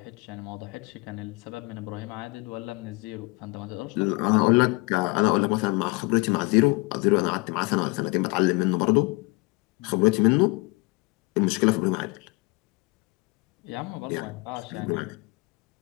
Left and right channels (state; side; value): quieter; right; 25.1 dB